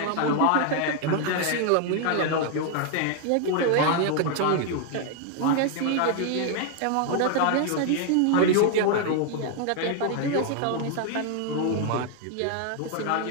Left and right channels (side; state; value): both; different; correlation 0.00